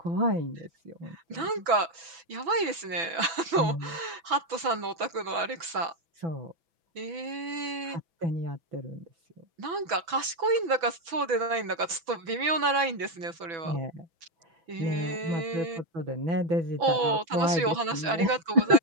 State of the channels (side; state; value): left; late; 6.0 ms